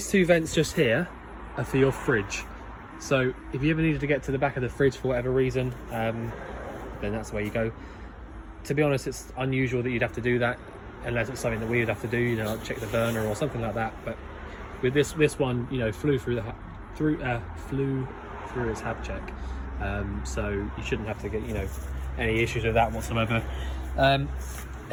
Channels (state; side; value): identical; both; correlation 1.00